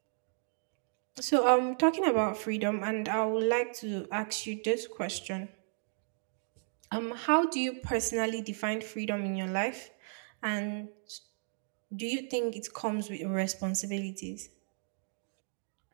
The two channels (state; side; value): silent; left; digital silence